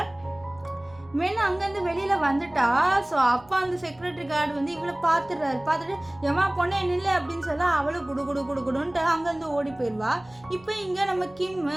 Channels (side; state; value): right; noise; hum, 26 dB below the sound